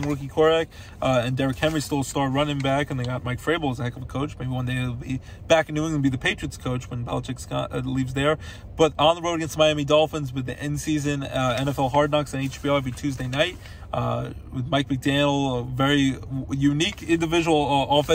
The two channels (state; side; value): identical; both; correlation 1.00